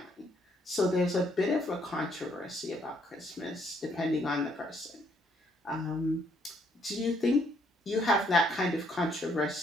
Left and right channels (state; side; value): normal; both; correlation 0.69